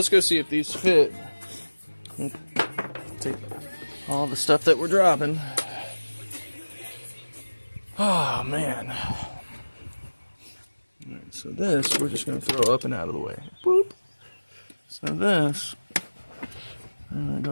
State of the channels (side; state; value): both; inverted; correlation -1.00